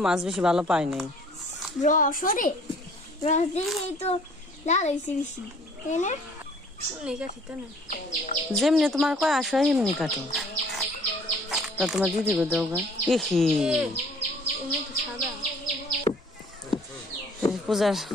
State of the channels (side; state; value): both; normal; correlation 0.56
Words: মাছ বেশি ভালো পাই নাই। রস দিয়ে তো লাল হয়েছে বেশি, তাই না? যেমনি তোমার কয় আসো এমনি কাটো। তা তোমার দিদি গো দেও গা। পূজার